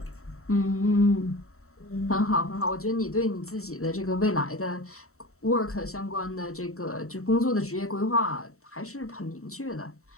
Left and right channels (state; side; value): late; right; 0.64 ms